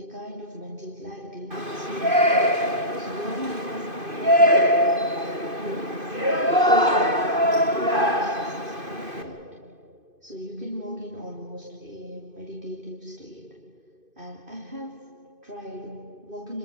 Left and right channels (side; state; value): left; late; 2.5 ms